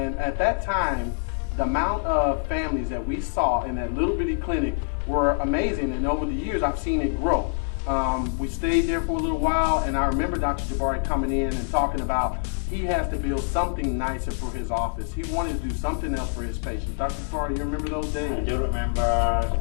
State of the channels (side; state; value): right; silent; 61 dB below the other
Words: at that time, the amount of families that we saw in that little bitty clinic were amazing. And over the years, I've seen it grow. We stayed there for a little while, and I remember Dr. Jabari coming in and talking about he has to build something nicer for his office. He wanted to do something else for his patients. Dr. Jabari, you remember those days? I do remember